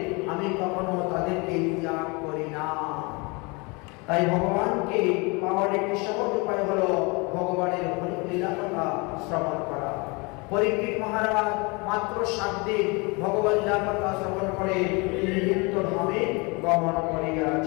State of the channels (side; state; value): right; quieter; 28.5 dB